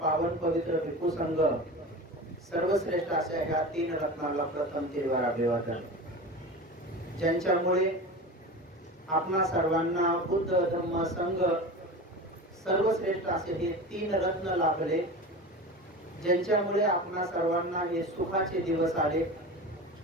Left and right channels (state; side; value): normal; both; correlation 0.31